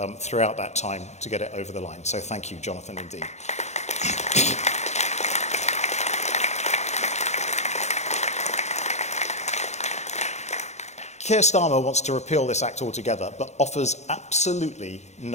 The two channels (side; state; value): right; late; 0.33 ms